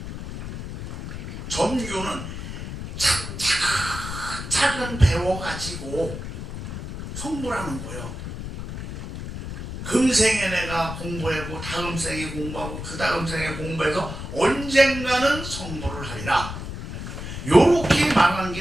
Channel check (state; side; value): noise; left; rumble, 8 dB below the sound